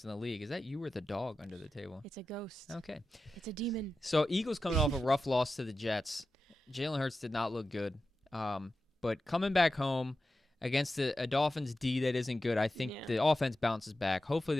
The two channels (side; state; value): both; normal; correlation 0.92